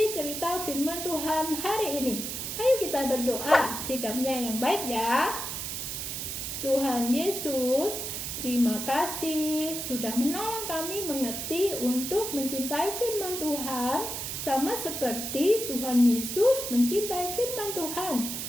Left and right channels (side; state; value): right; noise; hiss, 5 dB below the sound